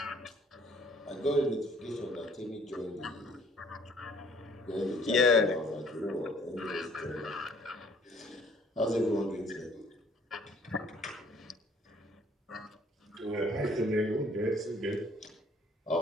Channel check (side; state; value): both; normal; correlation 0.59